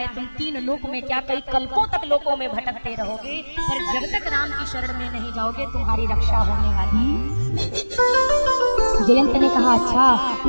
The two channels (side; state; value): both; inverted; correlation -1.00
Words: तुम 3 लोक में क्या कई कल्पों तक लोकों में भटकते रहोगे, पर जब तक राम की शरण में नहीं जाओगे तुम्हारी रक्षा होने वाली। जयंत ने कहा अच्छा,